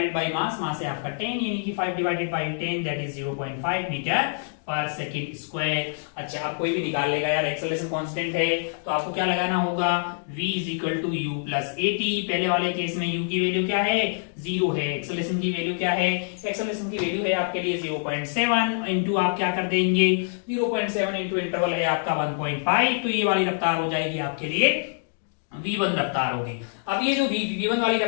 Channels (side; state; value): right; silent; digital silence